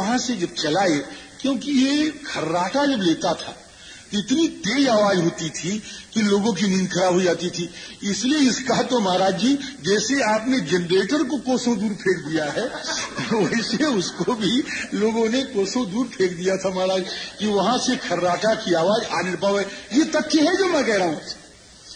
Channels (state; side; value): identical; both; correlation 1.00